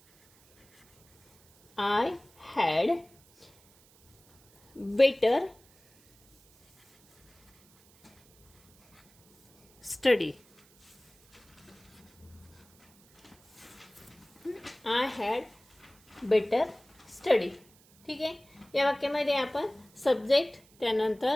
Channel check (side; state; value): right; noise; hiss, 29 dB below the sound